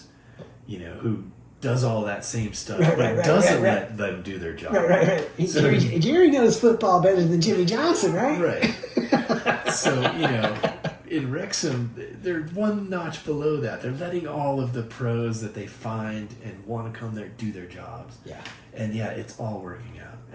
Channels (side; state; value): both; identical; correlation 1.00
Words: who does all that same stuff, but doesn't let them do their job. Right. So, Jerry knows football better than Jimmy Johnson, right? Right. So, in Wrexham, they're one notch below that. They're letting all of the pros that they find and want to come there do their jobs. Yeah. And it's all working out.